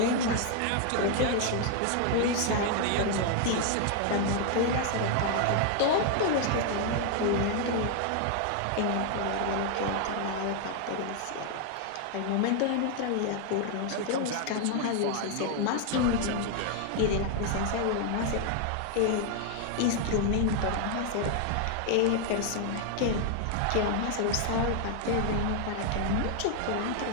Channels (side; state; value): both; different; correlation 0.00